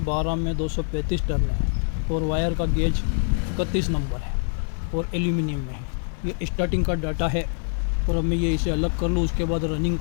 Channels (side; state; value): right; silent; 62 dB below the other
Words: में 235 टर्न है और वायर का गेज 31 नंबर है और एल्यूमिनियम में है। ये स्टार्टिंग का डाटा है और अब मैं ये इसे अलग कर लूँ, उसके बाद रनिंग